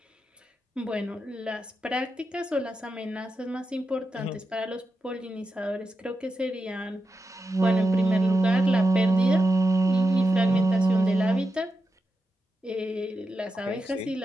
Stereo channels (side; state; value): both; normal; correlation 0.88